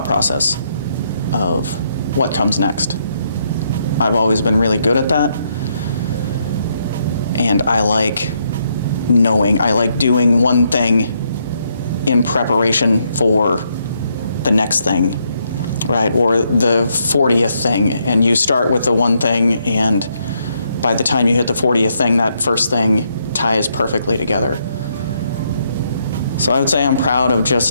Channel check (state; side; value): inverted; both; correlation -0.76